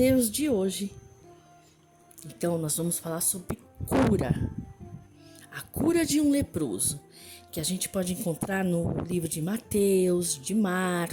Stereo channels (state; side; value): identical; both; correlation 1.00